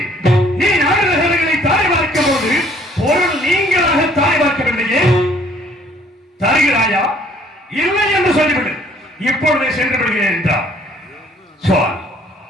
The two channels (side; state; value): both; normal; correlation 0.59